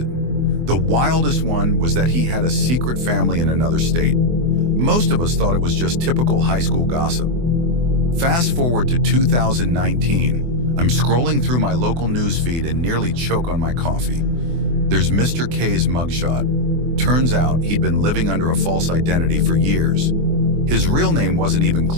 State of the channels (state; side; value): late; left; 24 ms